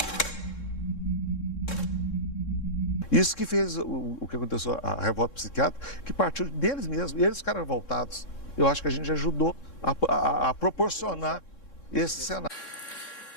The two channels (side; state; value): right; late; 3.7 ms